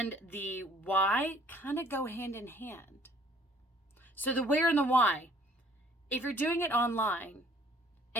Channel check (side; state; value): both; normal; correlation 0.57